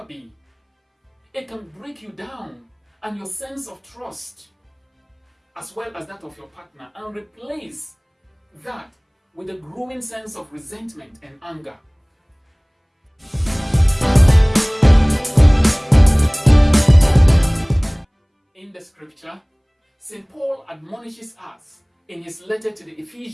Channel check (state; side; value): identical; both; correlation 1.00